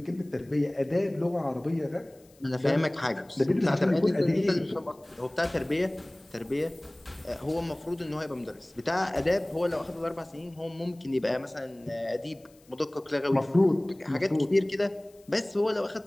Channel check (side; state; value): left; noise; hiss, 30 dB below the sound